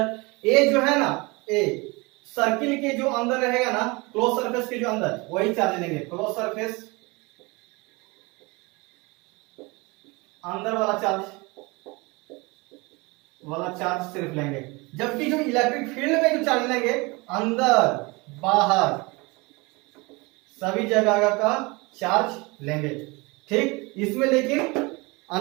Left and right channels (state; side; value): quieter; left; 25.8 dB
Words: ए जो है ना, ए सर्किल के जो अंदर रहेगा ना, क्लोज सरफेस के जो अंदर, वही चार्ज लेंगे। क्लोज सरफेस अंदर वाला चार्ज सिर्फ लेंगे, जबकि जो इलेक्ट्रिक फील्ड में जो चार्ज लेंगे, अंदर बाहर सभी जगह का चार्ज लेंगे। ठीक, इसमें लेकिन